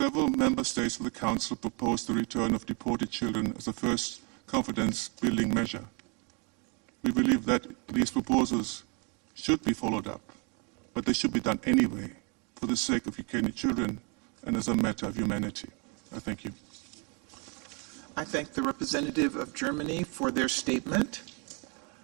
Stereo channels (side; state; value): left; quieter; 34.2 dB